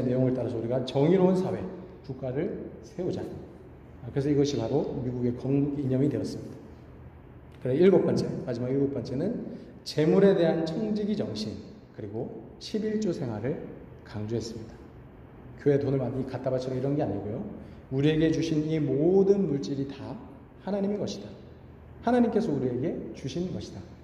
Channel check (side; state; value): both; identical; correlation 1.00